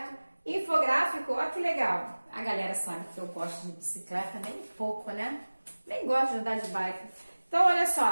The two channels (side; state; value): both; inverted; correlation -1.00